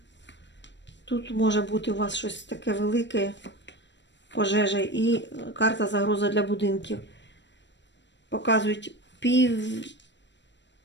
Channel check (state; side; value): late; right; 0.52 ms